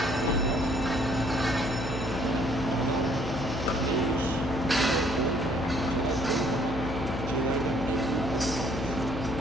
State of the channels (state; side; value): noise; left; hum, 5 dB below the sound